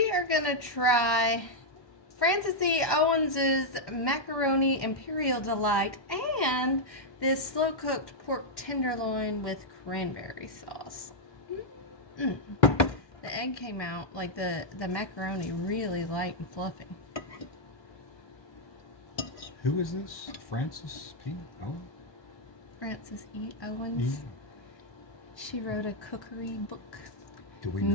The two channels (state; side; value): late; right; 1.2 ms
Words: are going to try Francis E. Owens's Macaroni Imperial Delight and this slow-cooked pork tenderloin with cranberry sauce. The egg came out, like the macaroni, really light and fluffy. Who is this? Francis P. Owens? Francis E. Owens. Yeah. She wrote a cookery book Do we know